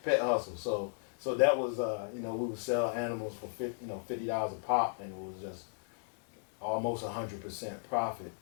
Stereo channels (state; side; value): silent; right; digital silence